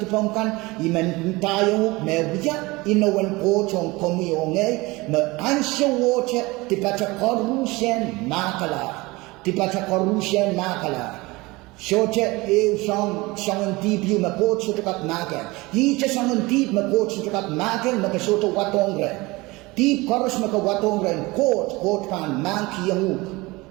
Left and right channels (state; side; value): quieter; left; 22.5 dB